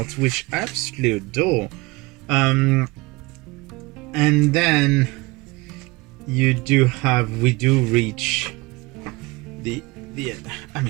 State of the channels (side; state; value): left; quieter; 23.4 dB